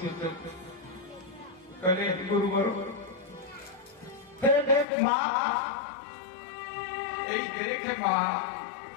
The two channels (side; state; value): right; drops out; at 4.9 s